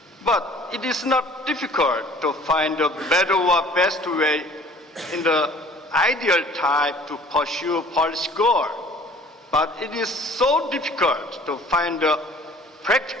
But it is not difficult to find a better or best way in the ideal type to pursue policy goal. But it is so difficult to find a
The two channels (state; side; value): normal; both; correlation 0.51